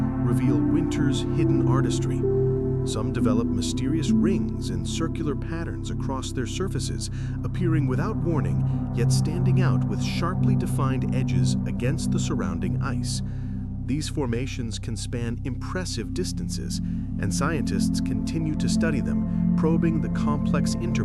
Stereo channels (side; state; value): both; identical; correlation 1.00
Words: reveal winter's hidden artistry. Some develop mysterious rings and circular patterns across their surfaces, appearing without warning, yet standing out with sharply defined edges against the surrounding ice. These formations can span impressive distances, and scientists continue to study them, probing the complex